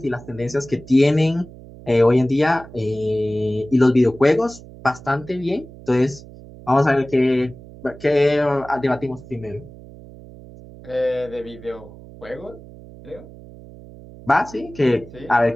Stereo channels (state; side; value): noise; right; hum, 18 dB below the sound